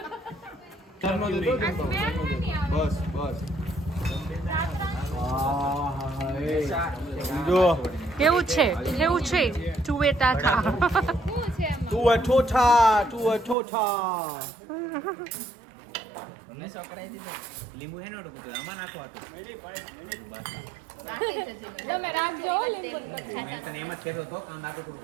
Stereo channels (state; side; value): drops out; left; at 13.6 s